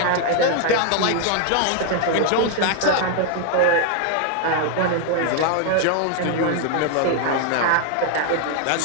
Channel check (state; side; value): different; both; correlation 0.00